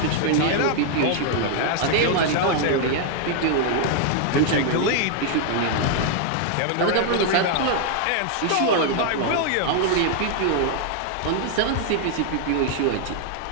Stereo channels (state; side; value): different; both; correlation 0.00